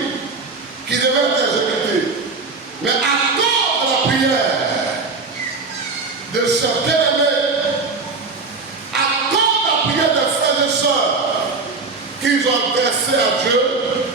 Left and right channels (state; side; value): quieter; left; 4.1 dB